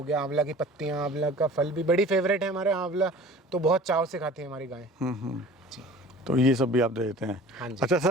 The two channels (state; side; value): normal; both; correlation 0.44